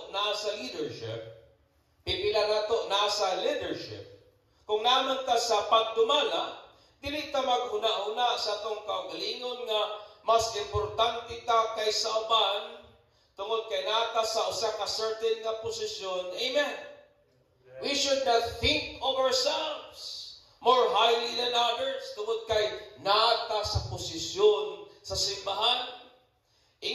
nasa leadership, pipila nato nasa leadership. Kung naman ta sa pagdumala, dili ta maghuna-huna sa atong kaugalingon nga mas importante ta kaysa uban tungod kay nata sa usa ka certain nga posisyon. Amen. We should not think of ourselves more highly than others tungod kay nata sa posisyon sa simbahan.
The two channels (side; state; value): both; identical; correlation 1.00